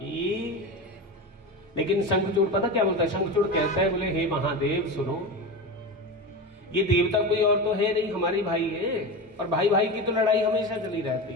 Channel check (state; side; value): normal; both; correlation 0.24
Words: लेकिन शंखचूड़ पता क्या बोलता है? शंखचूड़ कहता है, बोले हे महादेव सुनो, ये देवता कोई और तो है नहीं, हमारी भाई है, और भाई भाई की तो लड़ाई हमेशा चली रहती